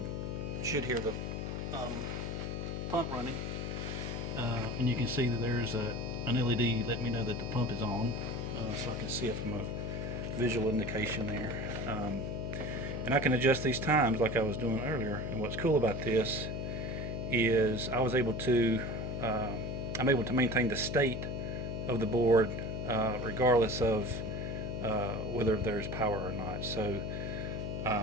should hear the pump running, and you can see that there's an LED letting me know that the pump is on, so I can see it from a visual indication there. And I can adjust these times like I was doing earlier. And what's cool about this is I'm able to maintain the state of the board regardless of whether there's power or not. So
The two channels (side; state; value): left; noise; hum, 4 dB below the sound